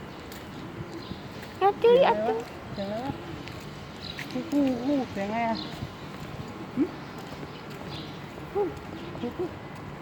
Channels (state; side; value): identical; both; correlation 1.00